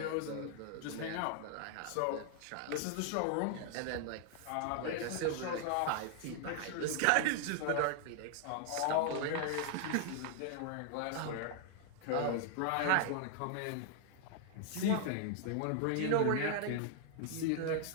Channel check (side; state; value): both; different; correlation 0.00